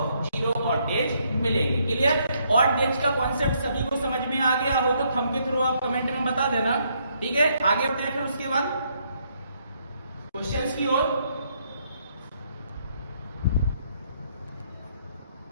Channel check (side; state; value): both; inverted; correlation -0.72